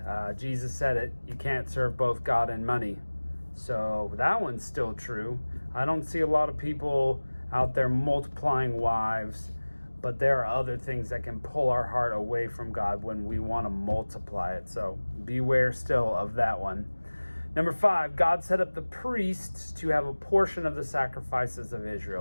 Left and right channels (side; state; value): both; inverted; correlation -1.00